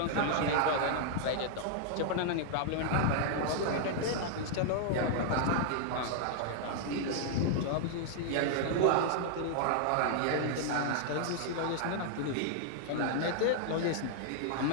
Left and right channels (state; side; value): different; both; correlation -0.01